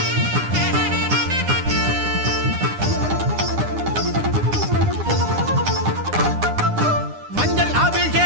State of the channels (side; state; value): left; late; 9.8 ms